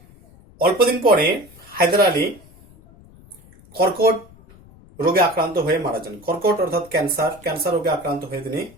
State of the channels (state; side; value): noise; left; rumble, 25 dB below the sound